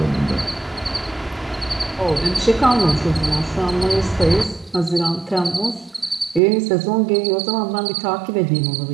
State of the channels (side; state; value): left; drops out; at 6.4 s